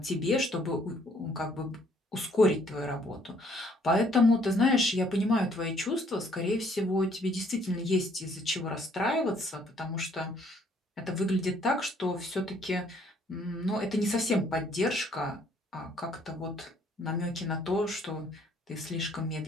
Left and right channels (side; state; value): both; normal; correlation 0.64